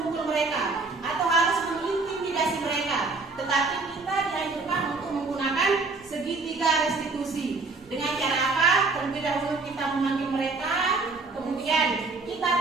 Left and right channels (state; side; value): quieter; left; 3.8 dB